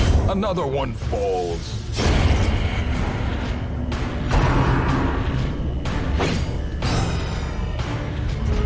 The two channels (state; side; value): identical; both; correlation 1.00